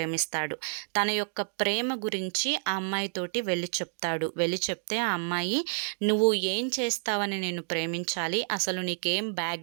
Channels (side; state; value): left; silent; digital silence